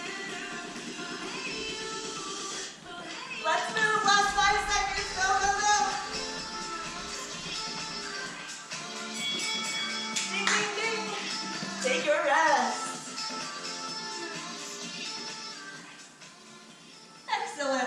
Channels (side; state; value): both; identical; correlation 1.00